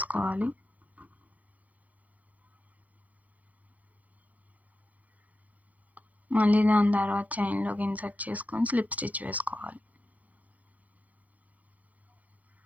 మళ్ళీ దాని తర్వాత చైన్‌లోకి ఇన్సర్ట్ చేసుకొని స్లిప్ స్టిచ్ వేసుకోవాలి.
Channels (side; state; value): left; late; 0.076 ms